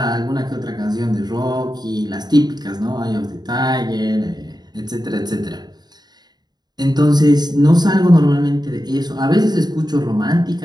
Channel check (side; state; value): left; late; 0.20 ms